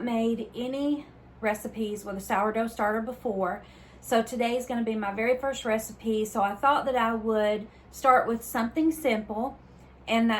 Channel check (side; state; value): both; identical; correlation 1.00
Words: made any recipes with a sourdough starter before, so today is going to be my very first recipe. So I thought that I would start with something simple, and